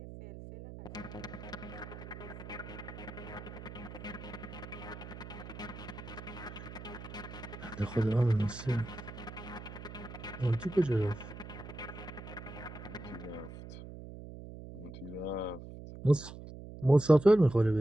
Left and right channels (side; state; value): right; noise; hum, 12 dB below the sound